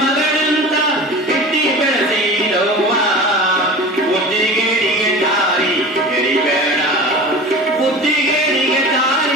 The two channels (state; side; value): normal; both; correlation 0.35